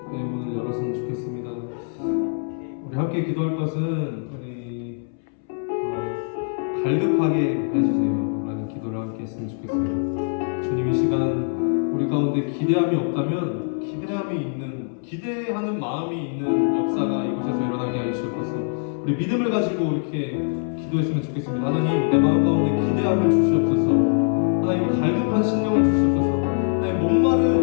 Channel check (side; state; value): right; silent; 63 dB below the other